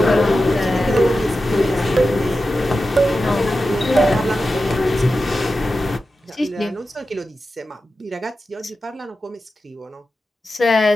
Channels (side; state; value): both; normal; correlation 0.92